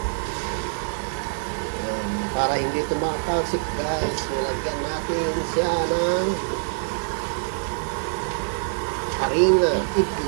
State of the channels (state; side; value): silent; left; 62 dB below the other